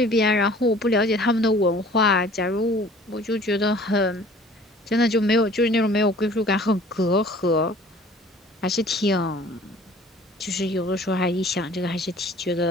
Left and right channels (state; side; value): normal; both; correlation 0.50